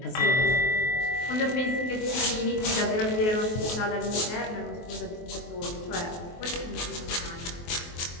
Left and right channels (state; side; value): late; right; 23 ms